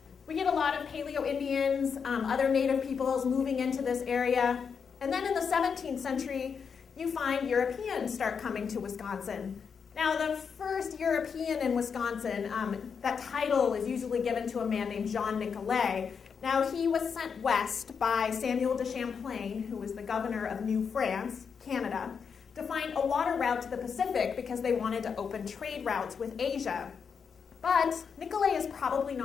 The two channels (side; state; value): right; quieter; 6.3 dB